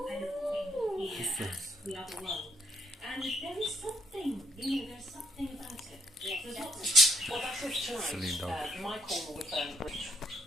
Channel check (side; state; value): both; normal; correlation 0.72